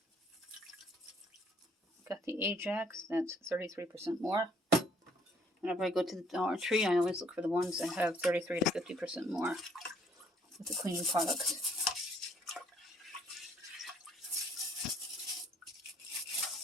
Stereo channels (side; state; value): both; normal; correlation 0.63